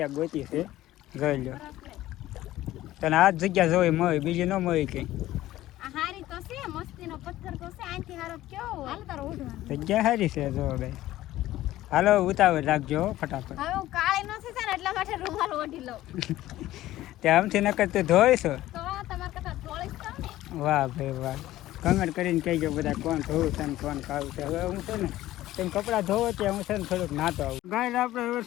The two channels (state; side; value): quieter; right; 15.1 dB